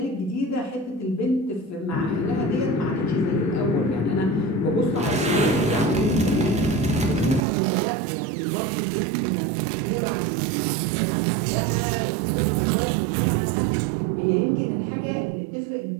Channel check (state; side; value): drops out; left; at 7.5 s